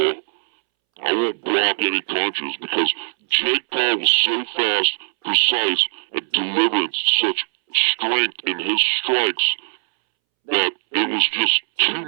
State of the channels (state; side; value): silent; left; 66 dB below the other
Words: I won't block any punches because Jake Paul was so fast, precise, and delivering such strength in his strikes that it was just too